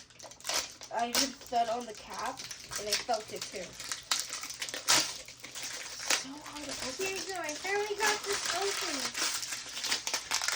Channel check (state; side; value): identical; both; correlation 1.00